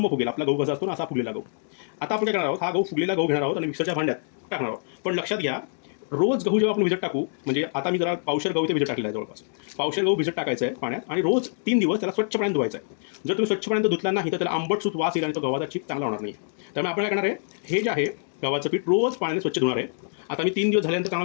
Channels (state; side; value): silent; right; digital silence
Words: फुगेल. आपला गहू कसा असतो ना असा फुगलेला गहू. आता आपण काय करणार आहोत, हा गहू फुगलेला गहू घेणार आहोत आणि मिक्सरच्या भांड्यात टाकणार आहोत. पण लक्षात घ्या, रोज गहू जेव्हा आपण भिजत टाकू, म्हणजे आता मी जरा पावशेर गहू ते भिजत टाकलेला आहे, जवळपास पावशेर गहू भिजत टाकायचं आहे पाण्यात आणि रोज 3 दिवस त्याला स्वच्छ पाण्यात धुवायचं आहे. जर तुम्ही स्वच्छ पाण्यात धुतला नाही तर त्याला आंबट सूत वास येईल आणि तो गव्हाचा चीक चांगला होणार नाही. त्यामुळे आपण काय करणार आहे, हे जे आहे गव्हाचं पीठ रोज पाण्याने स्वच्छ धुणार आहे. आता मी 3 दिवस झाल्यानंतर